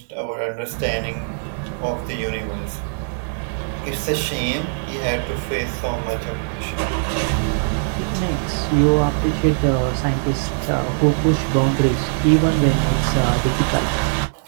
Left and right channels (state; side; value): silent; left; digital silence